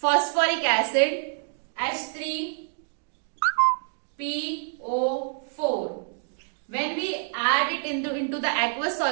acid H3PO4. When we add it into the aqueous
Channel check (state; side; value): silent; left; 60 dB below the other